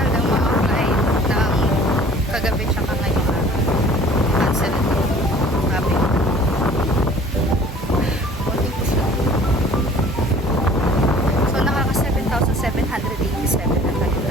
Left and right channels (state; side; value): normal; both; correlation 0.50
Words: ng mga flight ng kagabi tsaka ngayon cancel ito. Sabi. So nakaka 7,787 na tayo